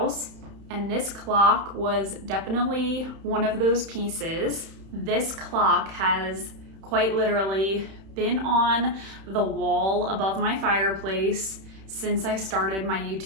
and this clock was definitely one of those pieces. This clock has quite literally been on the wall above my fireplace since I started my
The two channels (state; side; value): late; left; 31 ms